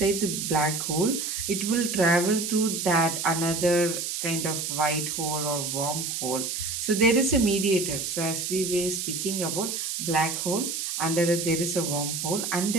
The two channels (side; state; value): right; noise; hiss, 3 dB below the sound